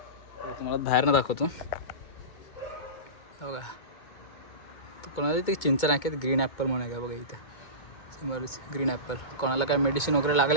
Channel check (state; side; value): late; right; 2.2 ms